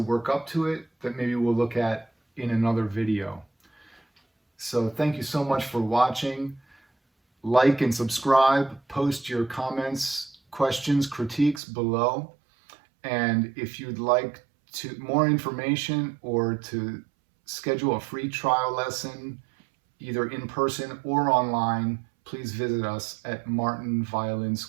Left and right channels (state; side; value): drops out; left; at 11.6 s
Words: up to it that maybe we'll look at in another video. So thank you so much for watching. like and subscribe, post your comments, questions, critiques below. And if you'd like more information or to schedule a free trial lesson, either in person or online, please visit us at